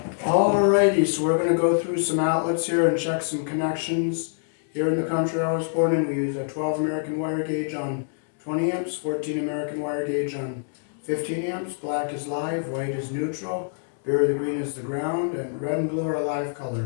Alrighty, so we're going to go through some outlets here and check some connections. Here in the country I was born in, we use a 12 American wire gauge on 20 amps, 14 American wire gauge on 15 amps. Black is live, white is neutral, berry the green is the ground, and red and blue are live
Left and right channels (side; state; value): right; silent; digital silence